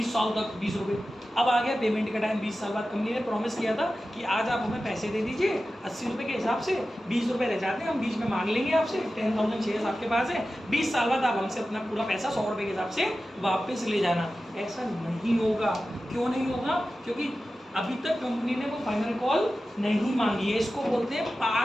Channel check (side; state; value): both; normal; correlation 0.94